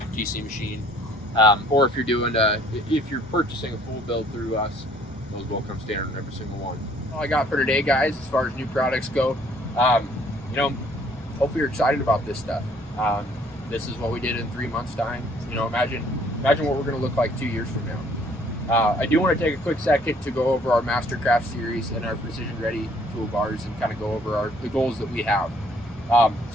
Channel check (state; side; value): noise; left; rumble, 21 dB below the sound